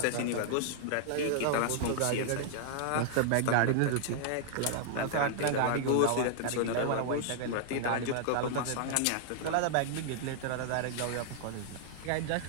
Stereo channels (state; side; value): different; both; correlation -0.01